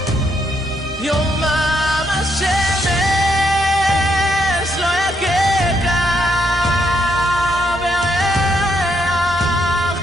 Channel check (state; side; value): normal; both; correlation 0.75